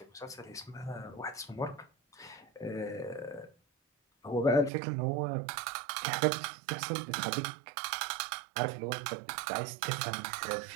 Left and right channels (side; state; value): left; drops out; at 4.7 s